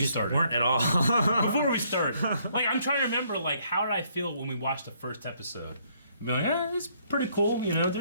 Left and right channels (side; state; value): both; inverted; correlation -0.68